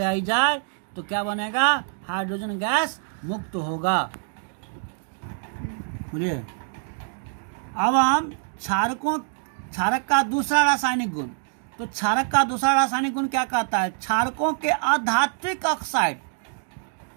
जाए तो क्या बनेगा? हाइड्रोजन गैस मुक्त होगा। बोलिए, अब हम क्षारक का दूसरा रासायनिक गुण, तो क्षारक का दूसरा रासायनिक गुण क्या कहता है? क्षारकों के अधात्विक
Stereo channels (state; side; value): silent; left; digital silence